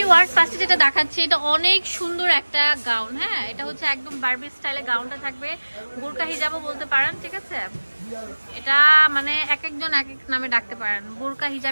ফার্স্টে যেটা দেখাচ্ছি এটা অনেক সুন্দর একটা গাউন। হ্যাঁ, এটা হচ্ছে একদম বারবি স্টাইলে গাউনটা থাকবে, বোরকা হিজাবও বলতে পারেন। ঠিক আছে, এটা মানে এক একজন এক এক নামে ডাকতে পারেন, বোরকা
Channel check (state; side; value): inverted; both; correlation -1.00